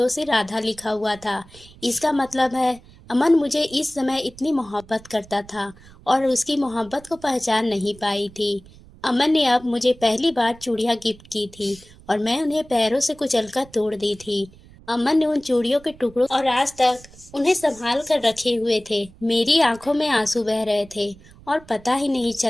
से राधा लिखा हुआ था। इसका मतलब है अमन मुझे इस समय इतनी मोहब्बत करता था और उसकी मोहब्बत को पहचान नहीं पाई थी। अमन ने अब मुझे पहली बार चूड़ियां गिफ्ट की थी और मैं उन्हें पैरों से कुचलकर तोड़ दी थी। अमन ने उन चूड़ियों के टुकड़ों और आज तक उन्हें संभाल कर रखे हुए थे। मेरी आंखों में आंसू बह रहे थे और पता ही नहीं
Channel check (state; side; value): noise; right; rumble, 23 dB below the sound